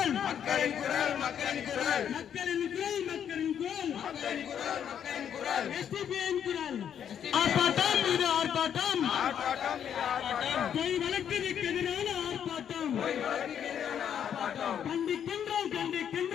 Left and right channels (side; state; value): right; quieter; 8.8 dB